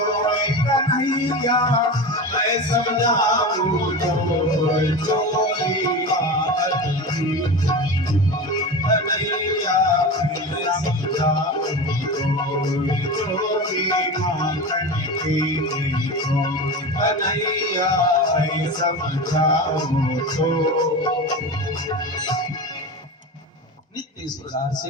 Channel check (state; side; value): normal; both; correlation 0.27